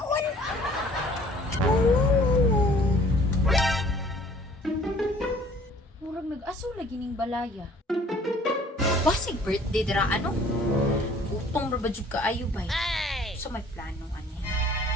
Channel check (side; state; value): both; normal; correlation 0.55